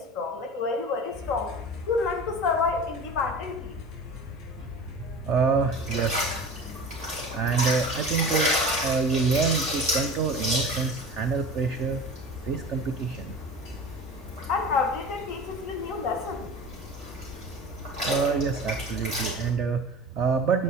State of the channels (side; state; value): both; normal; correlation 0.35